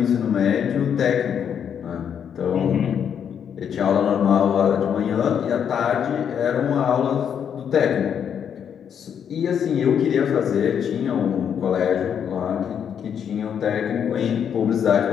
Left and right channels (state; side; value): quieter; right; 8.1 dB